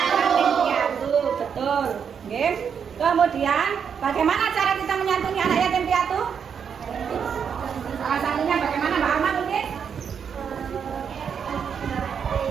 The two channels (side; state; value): left; quieter; 7.2 dB